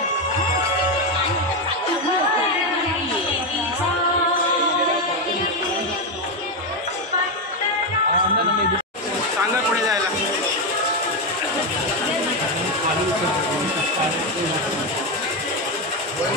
सांगा पुढे जायला.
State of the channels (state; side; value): normal; both; correlation 0.09